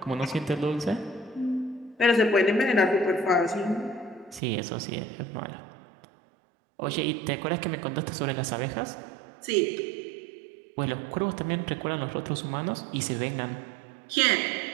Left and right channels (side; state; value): left; drops out; at 4.4 s